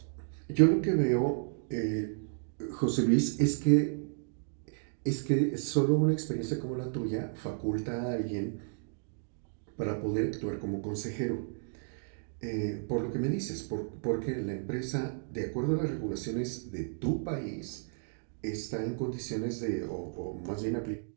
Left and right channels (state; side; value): silent; left; digital silence